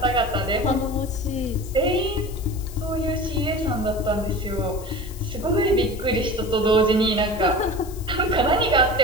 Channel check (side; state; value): left; noise; hiss, 18 dB below the sound